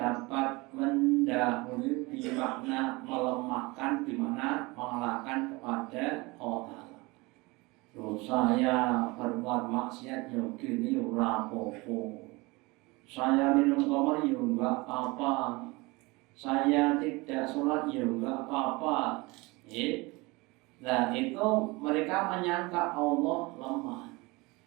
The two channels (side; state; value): left; quieter; 24.3 dB